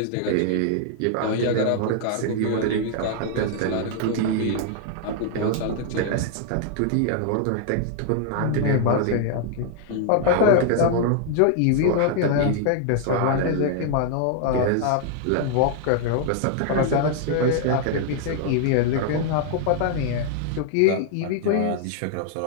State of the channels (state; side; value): different; both; correlation 0.00